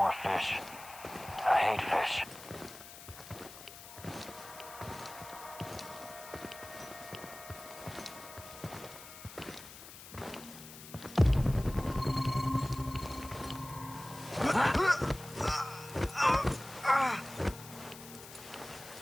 fish. I hate fish.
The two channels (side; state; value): left; noise; hiss, 15 dB below the sound